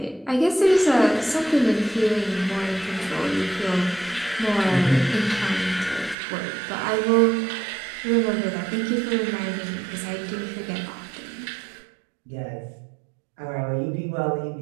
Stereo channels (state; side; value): drops out; left; at 6.2 s